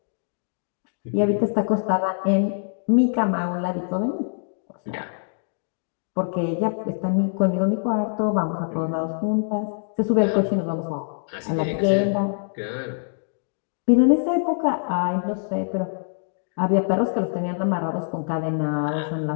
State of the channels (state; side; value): silent; right; digital silence